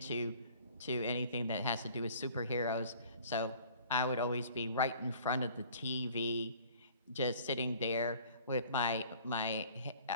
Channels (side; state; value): both; inverted; correlation -0.51